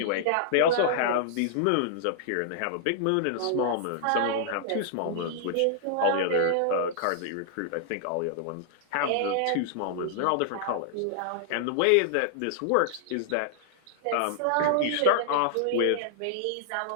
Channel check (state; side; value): different; both; correlation -0.01